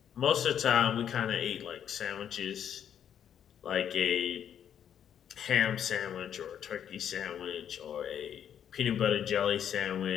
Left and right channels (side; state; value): right; quieter; 9.1 dB